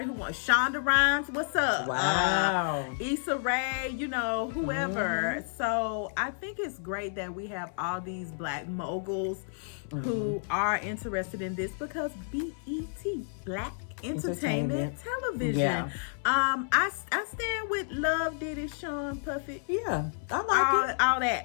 who wants Shonda Rhimes, what's up? Wow. Issa Rae, you know, whoever. So I think it's great that we have all these Black moguls who are interested in this, because BET, Black Entertainment Television. Yeah. I stand with Love, Diddy, Sean, Puffy. Yeah, I like it. All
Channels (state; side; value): silent; right; 58 dB below the other